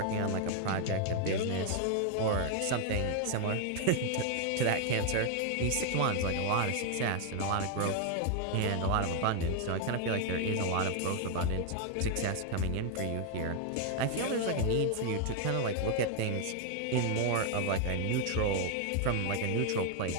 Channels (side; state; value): both; different; correlation 0.01